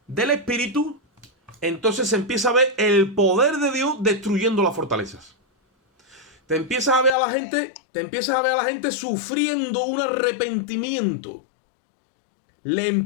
del Espíritu, entonces se empieza a ver el poder de Dios destruyendo las fortalezas. Te empiezas a ver a la gente sufriendo un arrepentimiento. Le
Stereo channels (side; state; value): right; drops out; at 7.1 s